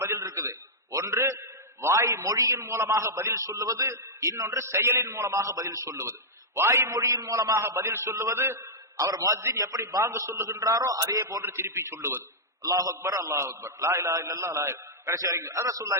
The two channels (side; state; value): both; normal; correlation -0.09